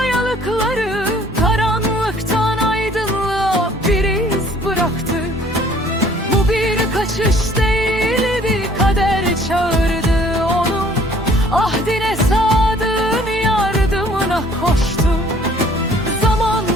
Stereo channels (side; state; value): both; normal; correlation 0.57